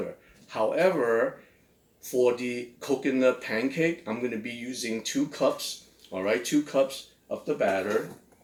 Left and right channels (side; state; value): both; identical; correlation 1.00